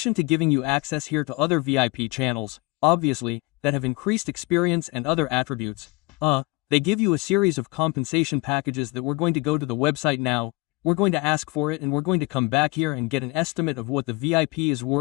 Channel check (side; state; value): right; quieter; 24.6 dB